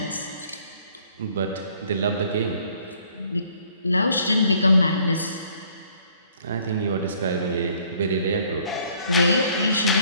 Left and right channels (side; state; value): both; inverted; correlation -0.61